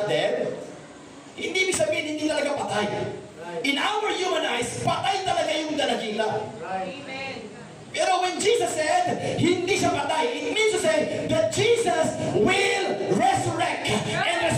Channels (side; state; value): both; identical; correlation 1.00